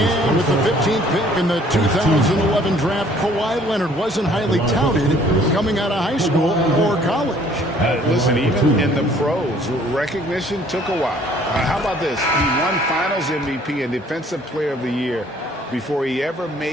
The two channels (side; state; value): both; normal; correlation 0.58